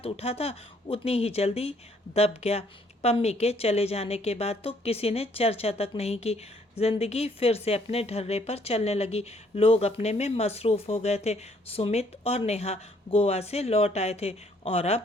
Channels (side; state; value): both; normal; correlation 0.65